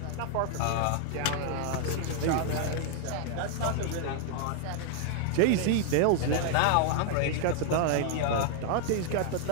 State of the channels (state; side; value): different; both; correlation 0.00